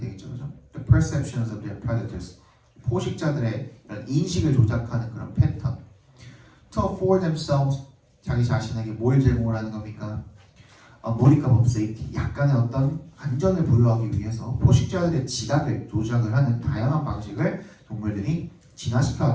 그죠? The perceptions of their predators, 포식자들의 이런 인식을 조작하는 그런 패턴. To afford themselves, 자기 자신에게 뭘 제공을 하는 겁니까? A modicum of safety, 약간의 어떤 안전을 부여하기 위해서 포식자들의 지각을 조작을 하는 다양한 방식을 동물들이 진화시켜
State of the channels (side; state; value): both; identical; correlation 1.00